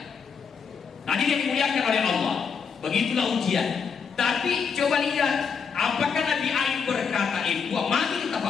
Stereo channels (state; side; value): quieter; right; 6.1 dB